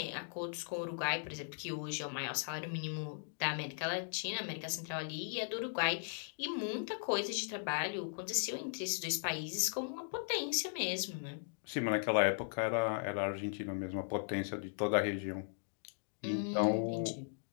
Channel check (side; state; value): right; silent; digital silence